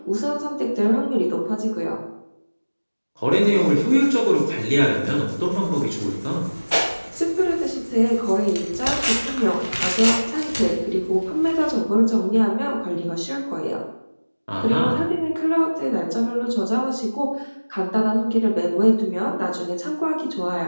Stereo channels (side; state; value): both; inverted; correlation -1.00